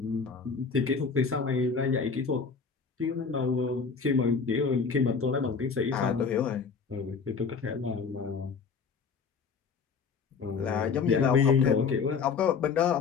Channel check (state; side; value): quieter; right; 5.5 dB